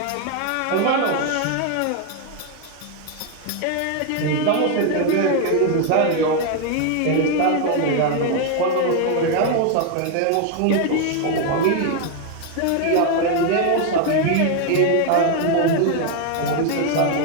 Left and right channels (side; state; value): both; different; correlation 0.01